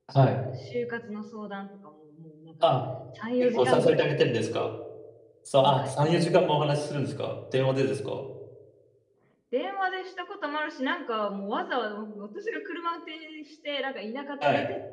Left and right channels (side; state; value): both; identical; correlation 1.00